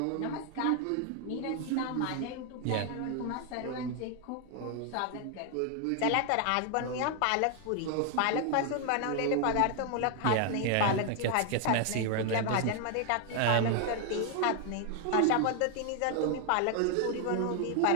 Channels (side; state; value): both; different; correlation 0.00